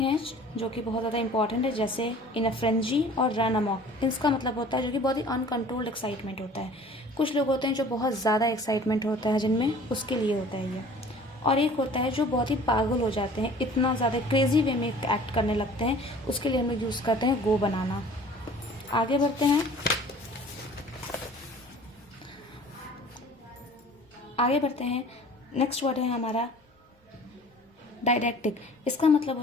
हैं जो कि बहुत ज़्यादा इंपॉर्टेंट है, जैसे इन अ फ्रेंजी और रन अमॉक। इसका मतलब होता है जो कि बहुत ही अनकंट्रोल्ड एक्साइटमेंट होता है। कुछ लोग होते हैं जो बहुत ज़्यादा एक्साइटमेंट होता है जिनमें, उसके लिए होता है ये। और एक होता है जो बहुत ही पागल हो जाते हैं, इतना ज़्यादा क्रेजी वे में एक्ट करने लगते हैं, उसके लिए हम लोग यूज़ करते हैं गो बनाना। आगे बढ़ते हैं। नेक्स्ट वर्ड है हमारा डायडैक्टिक। इसका मतलब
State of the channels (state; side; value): normal; both; correlation 0.47